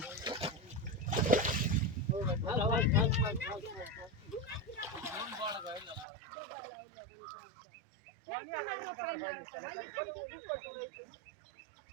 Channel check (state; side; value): drops out; left; at 6.1 s